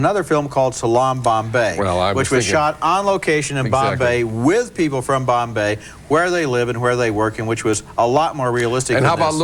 film called Salaam Bombay, which was shot on location in Bombay with people from Bombay, where they live and where they work, and which was a lot more realistic. And than how about this.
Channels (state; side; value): identical; both; correlation 1.00